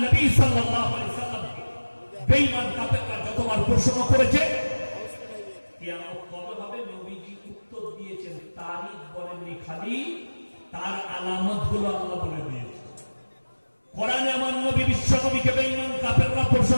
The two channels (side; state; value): both; inverted; correlation -1.00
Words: নবী সাল্লাল্লাহু আলাইহি সাল্লামকে বেঈমান কাফেররা যতবার প্রশ্ন করেছে কিয়ামত কবে হবে, নবীজি উত্তর দিয়েছেন, তারিখ বলেননি, খালি তার আলামতগুলো আল্লাহ বলে দিয়েছে। কোরআনে আমার নবী বিশ্ব নবীকে বেঈমান কাফেররা